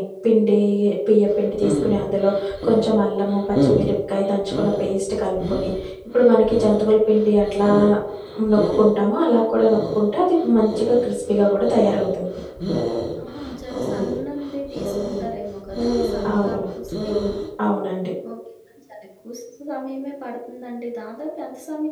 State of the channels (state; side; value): identical; both; correlation 1.00